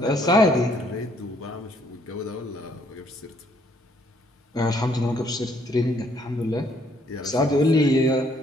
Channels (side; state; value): both; normal; correlation 0.66